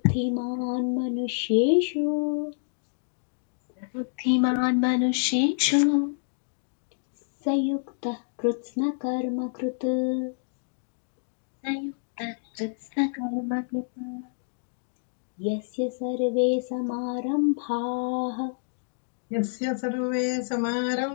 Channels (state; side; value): silent; right; digital silence